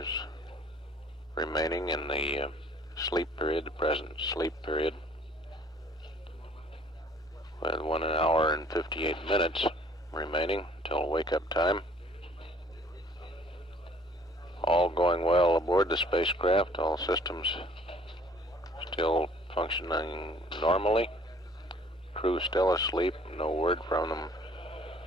remaining in the sleep period, the present sleep period, with 1 hour and 58 minutes remaining until wake-up time. All going well aboard the spacecraft, all systems still functioning normally. Crew still asleep, no word from them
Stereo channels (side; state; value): both; normal; correlation 0.56